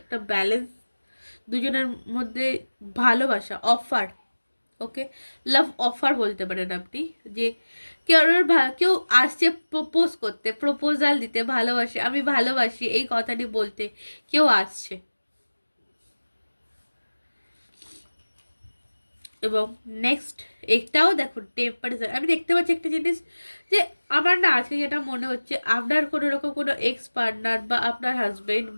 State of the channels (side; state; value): both; inverted; correlation -1.00